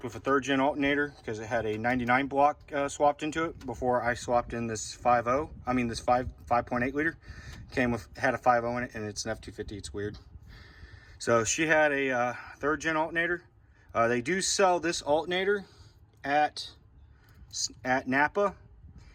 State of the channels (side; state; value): both; identical; correlation 1.00